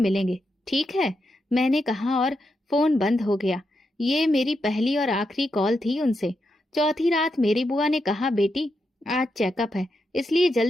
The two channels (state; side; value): normal; both; correlation 0.84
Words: ठीक है, मैंने कहा और फोन बंद हो गया। ये मेरी पहली और आखिरी कॉल थी उनसे। चौथी रात मेरी बुआ ने कहा, बेटी आज चेकअप है, इसलिए